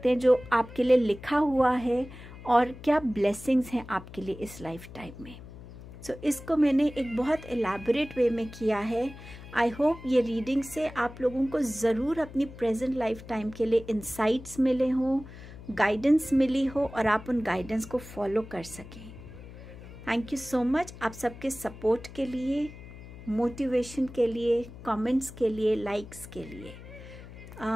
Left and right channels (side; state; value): left; noise; hum, 16 dB below the sound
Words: हैं जो आपके लिए लिखा हुआ है, और क्या ब्लेसिंग्स हैं आपके लिए इस लाइफ टाइम में। सो इसको मैंने एक बहुत एलैबोरेट वे में किया है। आई होप ये रीडिंग से आप लोगों को ज़रूर अपनी प्रेजेंट लाइफ टाइम के लिए इंसाइट्स मिले हों, गाइडेंस मिली हो और आप उन गाइडेंस को फॉलो कर सकें। थैंक यू सो मच आप सबके सपोर्ट के लिए, मोटिवेशन के लिए, कमेंट्स के लिए, लाइक्स के लिए।